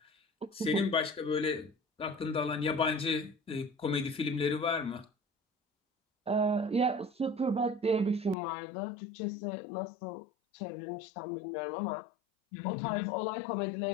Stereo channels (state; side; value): drops out; right; at 8.3 s